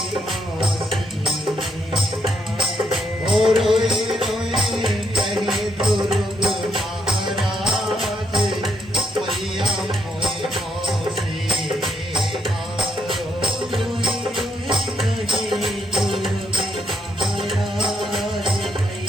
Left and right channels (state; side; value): normal; both; correlation 0.75